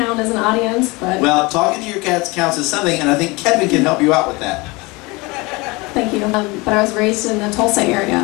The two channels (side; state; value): right; quieter; 24.8 dB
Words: as an audience, but... Well, talking to your cats counts as something, and I think Kevin can help you out with that. Thank you. But I was raised in the Tulsa area.